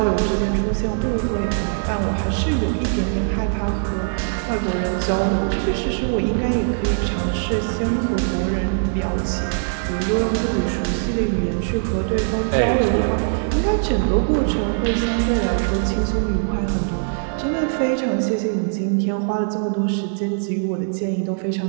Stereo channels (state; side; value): silent; left; digital silence